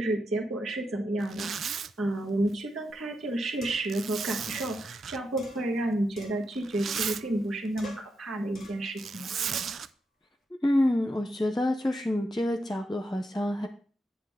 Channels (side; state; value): both; normal; correlation 0.84